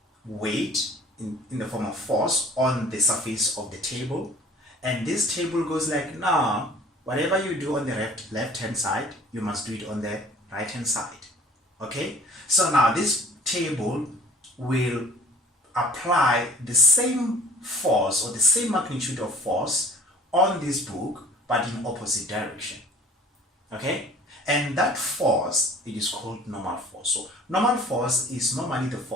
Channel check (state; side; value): normal; both; correlation 0.49